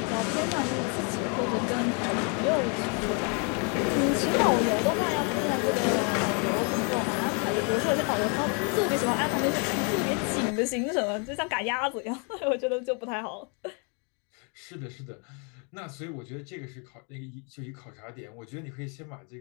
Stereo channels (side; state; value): right; quieter; 36.9 dB